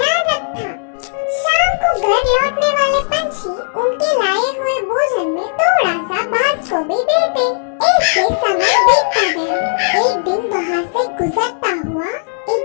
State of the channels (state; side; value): silent; right; 68 dB below the other